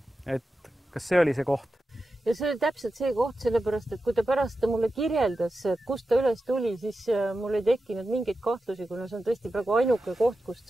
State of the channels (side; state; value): both; normal; correlation 0.92